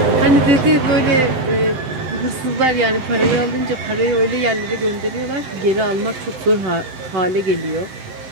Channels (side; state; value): left; late; 7.8 ms